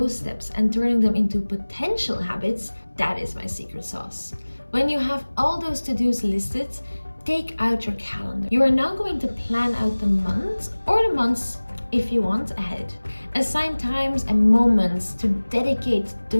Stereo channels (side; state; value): both; inverted; correlation -1.00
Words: steps and turning them into potential habits, that is my secret sauce. When you have all those to-dos listed, take out your calendar. You are now going to plan out the month or the months if you want ahead. Assign times and moments to dedicate